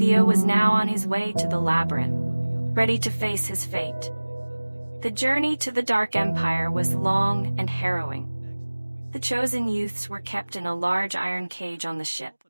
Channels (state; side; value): inverted; both; correlation -1.00